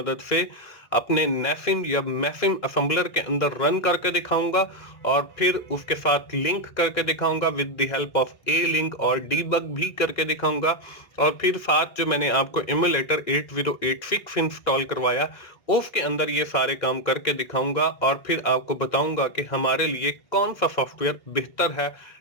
से अपने नेसिम या मेसिम असेंबलर के अंदर रन करके दिखाऊंगा और फिर उसके साथ लिंक करके दिखाऊंगा with the help of A link, और डीबग भी करके दिखाऊंगा। और फिर साथ जो मैंने आपको एमुलेटर 8086 इंस्टॉल करवाया उसके अंदर ये सारे काम करके दिखाऊंगा और फिर आपको बताऊंगा कि हमारे लिए कौन सा सॉफ्टवेयर बेहतर है,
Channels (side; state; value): right; late; 2.0 ms